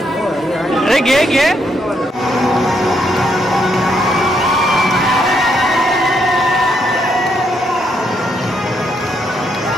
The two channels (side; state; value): both; normal; correlation 0.75